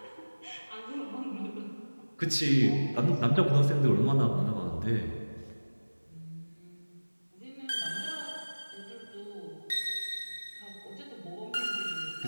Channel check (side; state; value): both; inverted; correlation -1.00